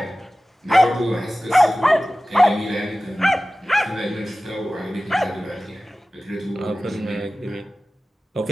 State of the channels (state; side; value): normal; both; correlation 0.96